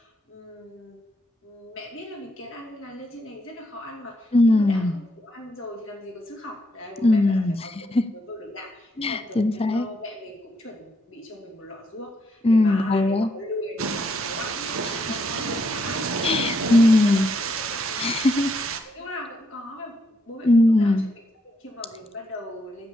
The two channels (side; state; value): both; normal; correlation 0.77